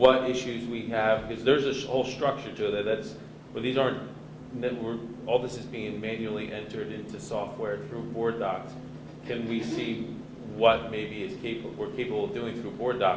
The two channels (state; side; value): identical; both; correlation 1.00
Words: issues we have? Because there's a whole structure to it these aren't, all this is being manually entered into software through board docs. Can we see what maybe we're capable of doing through board